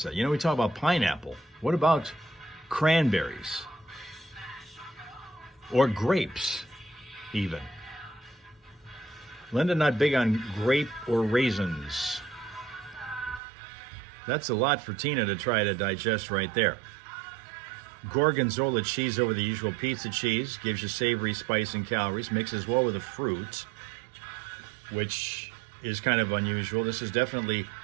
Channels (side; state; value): left; drops out; at 13.4 s